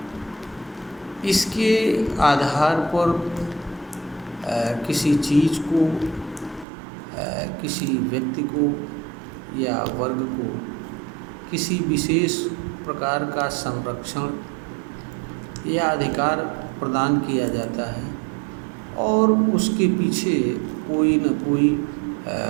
इसके आधार पर किसी चीज़ को, किसी व्यक्ति को या वर्ग को किसी विशेष प्रकार का संरक्षण या अधिकार प्रदान किया जाता है और उसके पीछे कोई न कोई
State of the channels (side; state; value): left; drops out; at 6.7 s